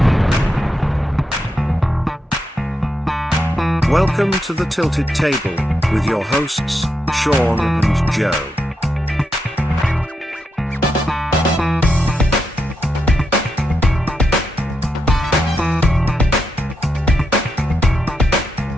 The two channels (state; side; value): normal; both; correlation 0.84